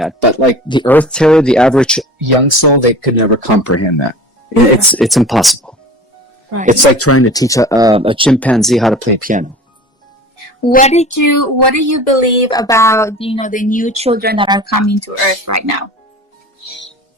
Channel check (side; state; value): both; normal; correlation 0.39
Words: but like the Earth Terror, the average young soul, they could never comprehend that. It's impossible. Right. It's like trying to teach a chimpanzee how to play piano. What do you believe about the new children that are coming to Earth right now?